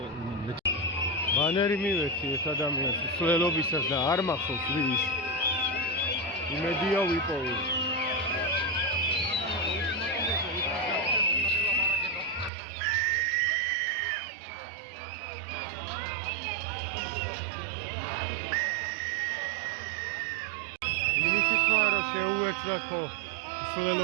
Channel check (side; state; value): left; drops out; at 12.5 s